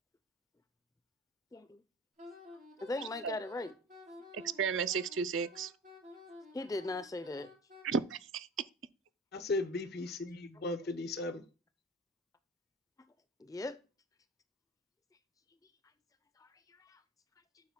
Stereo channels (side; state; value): both; normal; correlation 0.38